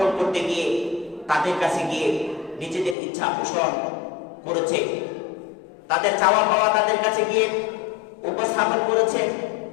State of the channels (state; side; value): drops out; right; at 3.0 s